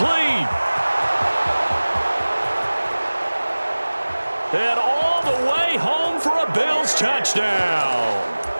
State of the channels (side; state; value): both; inverted; correlation -1.00